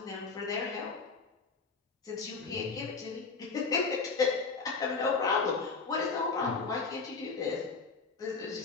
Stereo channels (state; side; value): quieter; right; 4.5 dB